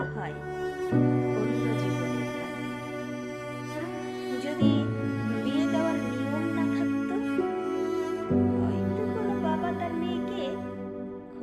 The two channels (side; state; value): both; identical; correlation 1.00